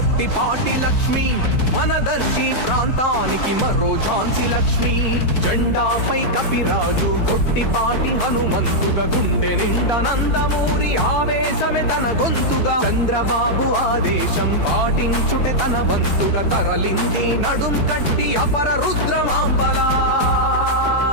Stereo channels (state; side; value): late; right; 4.6 ms